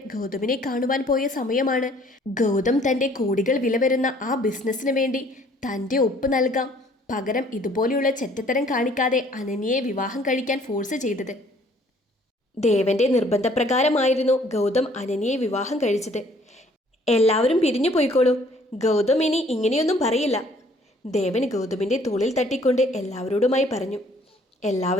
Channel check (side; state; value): both; normal; correlation 0.59